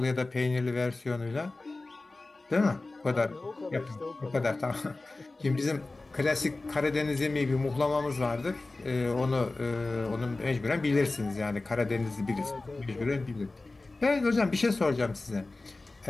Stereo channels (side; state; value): right; quieter; 3.2 dB